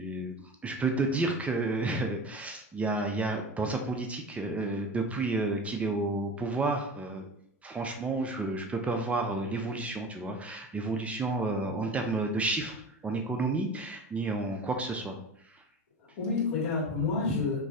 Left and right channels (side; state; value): both; normal; correlation 0.33